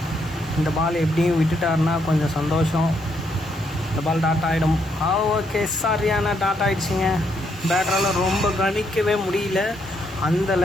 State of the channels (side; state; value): both; normal; correlation 0.75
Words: இந்த பால் எப்படியும் விட்டுட்டாருன்னா கொஞ்சம் சந்தோஷம். இந்த பால் டாட் ஆகிடும். ஓகே, சரியான டாட் ஆகிடுச்சிங்க. பேட்டரால் ரொம்ப கணிக்கவே முடியல. அந்த